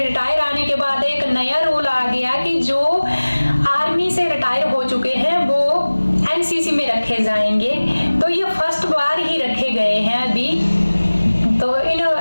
आने के बाद एक नया रूल आ गया कि जो आर्मी से रिटायर हो चुके हैं वो एनसीसी में रखे जाएंगे। तो ये फर्स्ट बार ही रखे गए हैं अभी। तो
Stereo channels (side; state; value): both; inverted; correlation -1.00